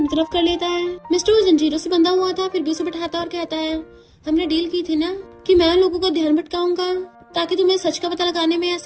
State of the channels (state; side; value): identical; both; correlation 1.00